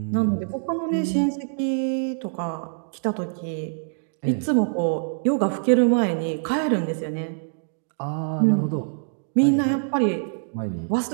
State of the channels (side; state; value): left; silent; digital silence